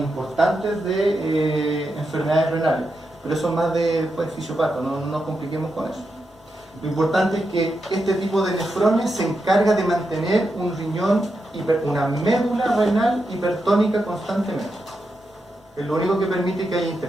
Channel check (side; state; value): both; normal; correlation 0.86